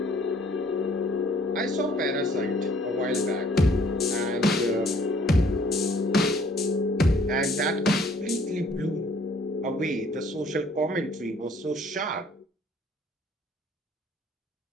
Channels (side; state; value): both; normal; correlation 0.59